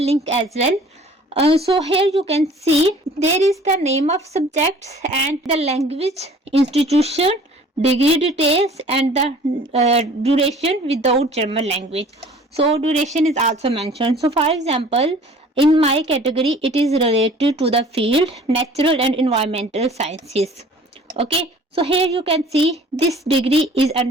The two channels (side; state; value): both; normal; correlation 0.50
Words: link as well. So here you can see there is the name of subjects and the language, institution, degree details, and the duration without German language. So duration is also mentioned. So for example, in my category it is related to the field natural and environmental sciences. Okay, so here you can see this degree is